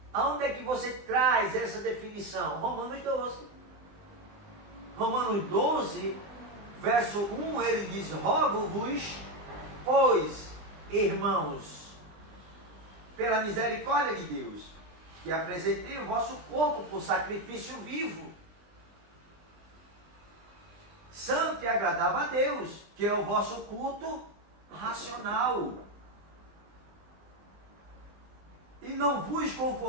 Aonde é que você traz essa definição? Romanos 12. Romanos 12, verso 1, ele diz: rogo-vos, pois, irmãos, pela misericórdia de Deus, que apresentei o vosso corpo por sacrifício vivo, santo e agradável a Deus, que é o vosso culto racional. E não vos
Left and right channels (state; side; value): late; left; 20 ms